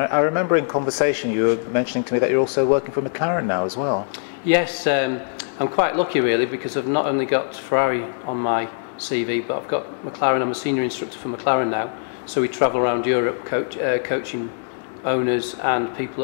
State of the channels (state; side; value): silent; right; digital silence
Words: remember in conversation you were mentioning to me that you're also working for McLaren now as well. Yes, I'm quite lucky really, because I've not only got Ferrari on my CV, but I've got McLaren. I'm a senior instructor for McLaren now, so we travel around Europe coaching owners and people